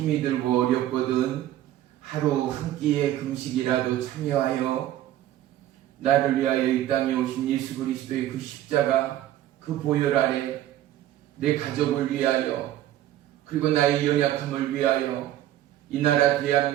들고 어렵거든 하루 한 끼의 금식이라도 참여하여 나를 위하여 이 땅에 오신 예수 그리스도의 그 십자가, 그 보혈 아래 내 가족을 위하여, 그리고 나의 연약함을 위하여 이 나라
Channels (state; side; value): quieter; left; 13.1 dB